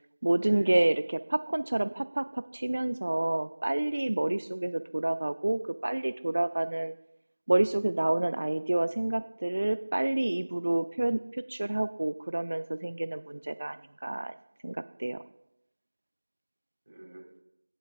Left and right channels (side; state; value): both; inverted; correlation -1.00